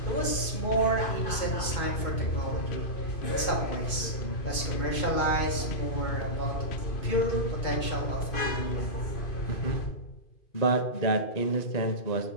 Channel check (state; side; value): late; right; 2.5 ms